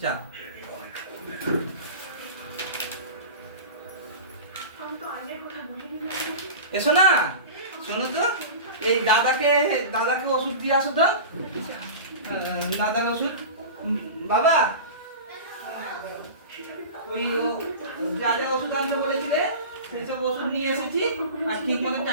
যা। এসো না, শোনো তো, এই দাদাকে ওষুধ দিয়ে আসো তো। দাদার ওষুধ বাবা, ওই যা যা ওষুধ আনতে বলেছিলে সেসব ওষুধ নিয়ে এসেছি। আর ঠিক মতো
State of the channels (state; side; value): inverted; both; correlation -0.32